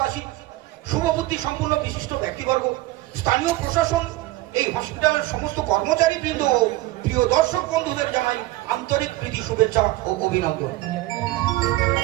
শুভবুদ্ধি সম্পূর্ণ বিশিষ্ট ব্যক্তিবর্গ, স্থানীয় প্রশাসন, এই হসপিটালের সমস্ত কর্মচারী বৃন্দ ও প্রিয় দর্শক বন্ধুদের জানাই আন্তরিক প্রীতি, শুভেচ্ছা ও অভিনন্দন।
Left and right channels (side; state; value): left; quieter; 18.3 dB